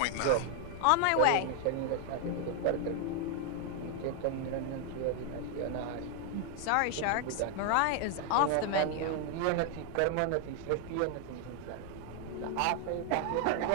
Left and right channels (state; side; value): different; both; correlation 0.00